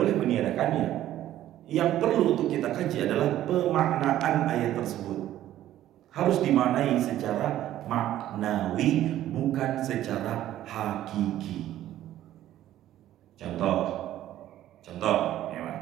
meniadakannya. Yang perlu untuk kita kaji adalah pemaknaan ayat tersebut. Harus dimaknai secara maknawi, bukan secara hakiki. Contoh, ya Pak.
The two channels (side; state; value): left; quieter; 13.0 dB